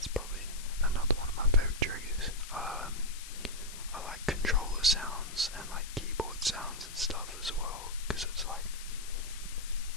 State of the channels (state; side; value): noise; left; hiss, 13 dB below the sound